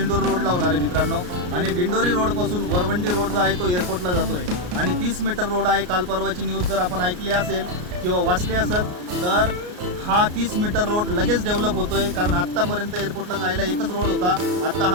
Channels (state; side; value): late; left; 33 ms